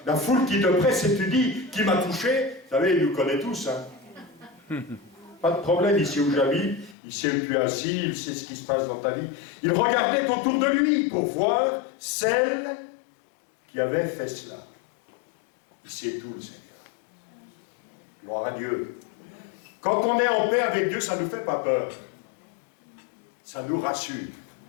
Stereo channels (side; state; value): right; drops out; at 7.0 s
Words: la foule qui te presse et tu dis, qui m'a touché? Vous savez, il nous connaît tous. Hein? Pas de problème ici où j'habite, il sait où tu es assis, il sait ce qui se passe dans ta vie. Il regardait autour de lui pour voir celle qui avait fait cela. Il sait tout, le Seigneur. Gloire à Dieu. Quand on est en paix avec Dieu, ça ne nous fait pas peur. Ça nous rassure.